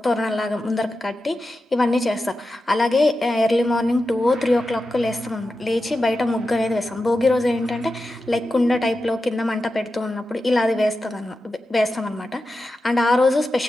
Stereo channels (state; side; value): normal; both; correlation 0.91